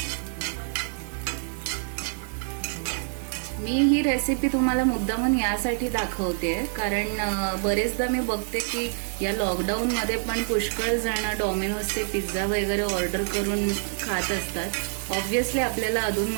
मी ही रेसिपी तुम्हाला मुद्दामून यासाठी दाखवते कारण बरेचदा मी बघते की या लॉकडाऊन मध्ये पण पुष्कळ जण डॉमिनोजचे पिझ्झा वगैरे ऑर्डर करून खात असतात. ऑब्व्हियसली आपल्याला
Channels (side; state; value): left; silent; 56 dB below the other